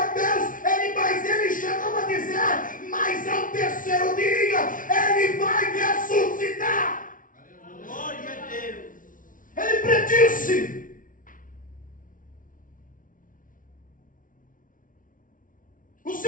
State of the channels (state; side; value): late; right; 0.38 ms